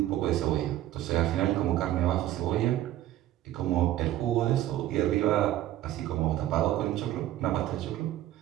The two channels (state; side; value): quieter; left; 13.7 dB